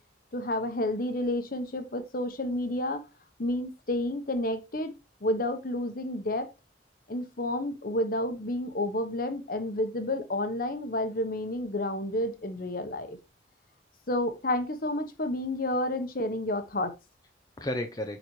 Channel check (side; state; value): both; normal; correlation 0.17